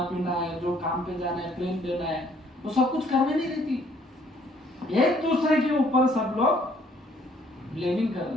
पीना है, जो काम पे जाना है, प्रेम देना है, वो सब कुछ करने नहीं देती। एक दूसरे के ऊपर सब लोग ब्लेमिंग कर रहे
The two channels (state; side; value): normal; both; correlation 0.63